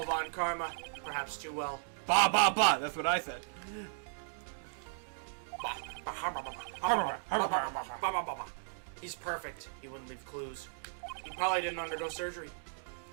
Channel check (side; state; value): left; silent; digital silence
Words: Von Karma, perhaps too well. Ba ba ba, that's what I said. He's perfect. He wouldn't leave clues. He probably didn't undergo surgery.